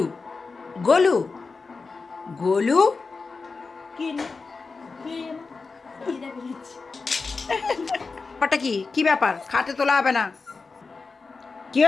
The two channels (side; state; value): right; quieter; 4.3 dB